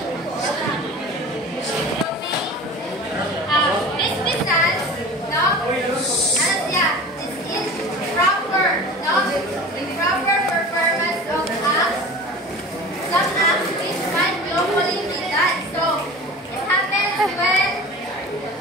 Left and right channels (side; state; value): both; normal; correlation 0.37